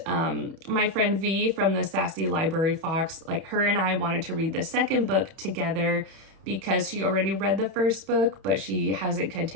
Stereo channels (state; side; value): late; left; 31 ms